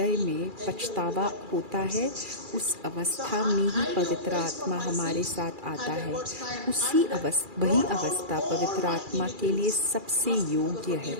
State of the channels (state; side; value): late; left; 2.4 ms